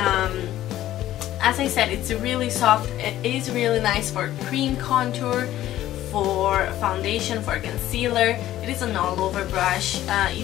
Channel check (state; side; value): quieter; right; 13.7 dB